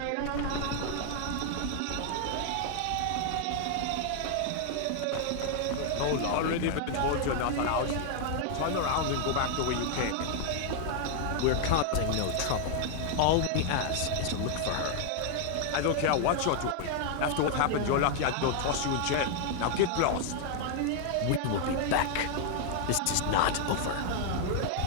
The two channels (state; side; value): different; both; correlation 0.00